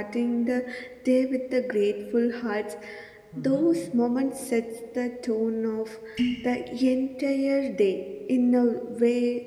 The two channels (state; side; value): identical; both; correlation 1.00